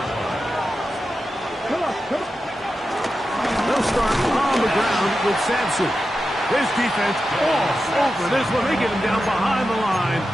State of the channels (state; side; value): normal; both; correlation 0.91